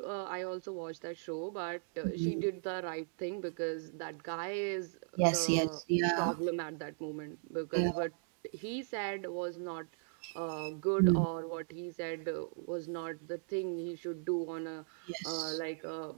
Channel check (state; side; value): silent; left; digital silence